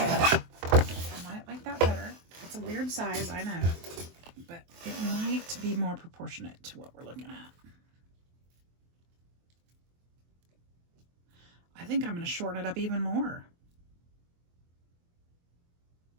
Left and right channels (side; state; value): left; late; 23 ms